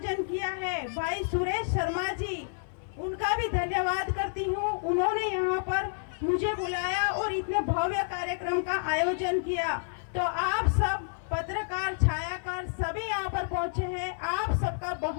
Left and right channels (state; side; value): silent; right; 58 dB below the other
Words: किया है भाई सुरेश शर्मा जी, उनका भी धन्यवाद करती हूँ। उन्होंने यहाँ पर मुझे बुलाया और इतने भव्य कार्यक्रम का आयोजन किया। तो आप सब पत्रकार, छायाकार सभी यहाँ पर पहुँचे हैं, आप सबका